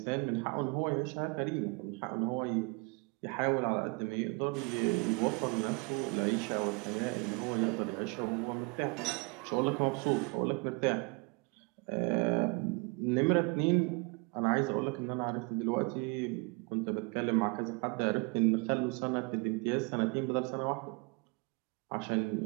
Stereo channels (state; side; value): quieter; left; 30.8 dB